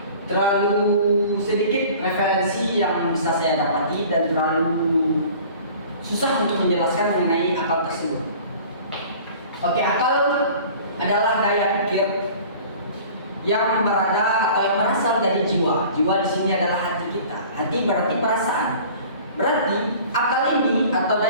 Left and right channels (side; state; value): both; inverted; correlation -0.45